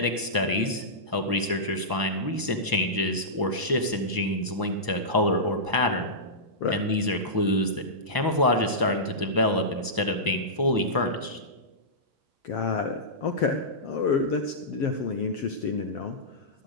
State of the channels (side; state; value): left; late; 1.0 ms